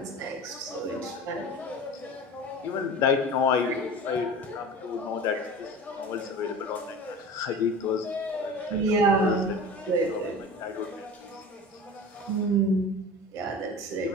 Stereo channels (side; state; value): both; normal; correlation 0.35